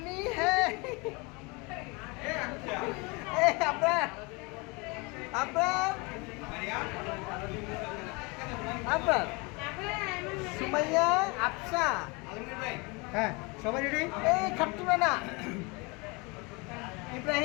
है। আপনার আপনার সুমাইয়া আফসা হ্যাঁ সবাই রেডি। এই খাট্টু না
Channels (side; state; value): right; quieter; 27.9 dB